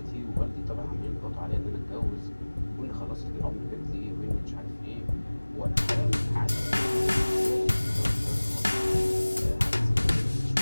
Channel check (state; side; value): inverted; both; correlation -1.00